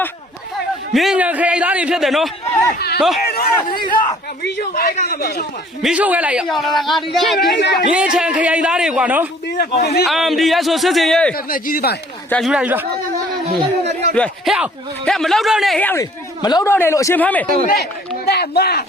ာ်မြင်းညာခရိုင်သားတွေဖြစ်တယ်နော်မီးရှို့ခိုင်းတာမီးရှို့ခဲ့လိုက်ရမြင်းချန်ခရိုင်သားတွေကွာနော်ဒီရဆိုစစ်စင်ရေးကြီးသေးပါကြာယူလိုက်ဟဲ့မလောက်တော့နဲ့ဟဲ့လေမလောက်တော့နဲ့လို့အရှင်ဖမ်းမယ်တဲ့မ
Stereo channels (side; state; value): both; normal; correlation 0.55